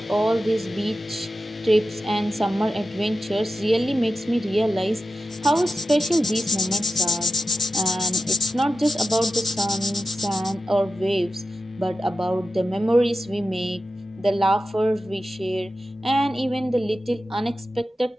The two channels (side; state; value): both; normal; correlation 0.91